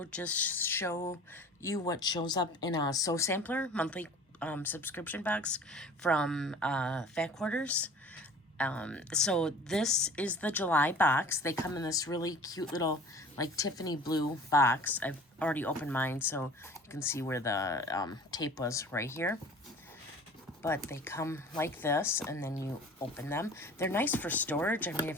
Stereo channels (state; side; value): normal; both; correlation 0.45